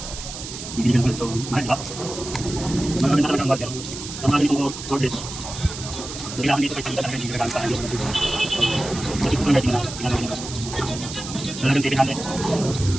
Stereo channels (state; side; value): noise; right; hiss, 10 dB below the sound